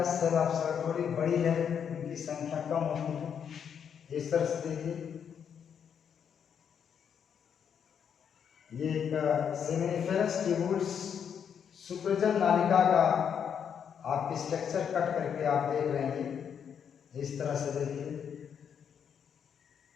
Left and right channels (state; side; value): quieter; right; 7.8 dB